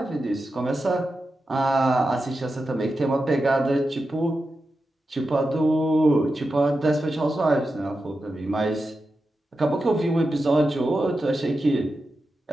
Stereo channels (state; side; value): normal; both; correlation 0.90